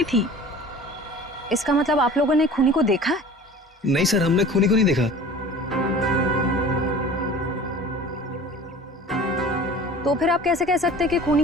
थी। इसका मतलब आप लोगों ने खूनी को देखा है? नहीं सर, हमने खूनी को नहीं देखा। तो फिर आप कैसे कह सकते हैं कि खूनी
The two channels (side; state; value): both; normal; correlation 0.42